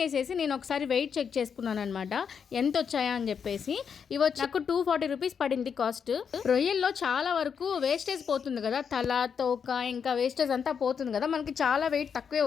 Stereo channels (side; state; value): right; quieter; 6.8 dB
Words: చేసేసి నేను ఒకసారి వెయిట్ చెక్ చేసుకున్నాను అనమాట, ఎంత వచ్చాయా అని చెప్పేసి. ఇవి వచ్చి నాకు 240 రూపీస్ పడింది కాస్ట్. రొయ్యల్లో చాలా వరకు వేస్టేజ్ పోతుంది కదా, తల తోక ఇంకా వేస్టేజ్ అంతా పోతుంది కదా, మనకి చాలా వెయిట్ తక్కువే